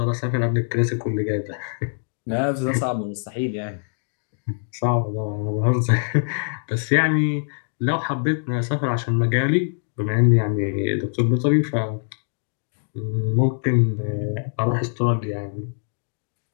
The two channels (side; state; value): right; silent; digital silence